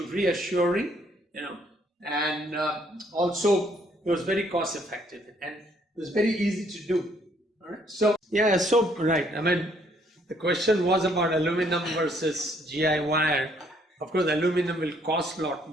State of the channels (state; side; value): normal; both; correlation 0.66